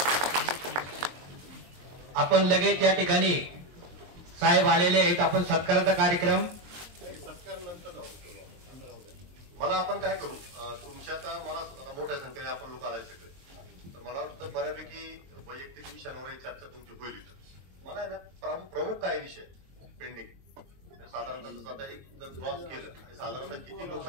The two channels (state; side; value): late; left; 23 ms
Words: आपण लगेच या ठिकाणी साहेब आलेले आहेत, आपण सत्काराचा कार्यक्रम सत्कार नंतर मला आपण काय करू, तुमच्या आता मला मोठ्या संख्येने आपण लोक आलाय सगळे, तर मला वाटतं बऱ्यापैकी वैयक्तिक विषयांवर चर्चा तुमची होईल। मला आहे ना प्रमुख काय विषय पेंडिंग साधारणतः आता एक क्रॉस केलं आणि साधारणतः किती